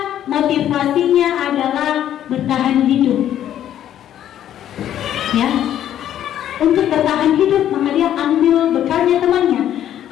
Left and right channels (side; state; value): right; quieter; 11.1 dB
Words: motivasinya adalah bertahan hidup. Ya, untuk bertahan hidup maka dia ambil bekalnya temannya.